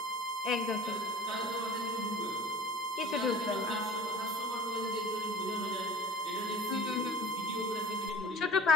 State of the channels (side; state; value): both; normal; correlation 0.42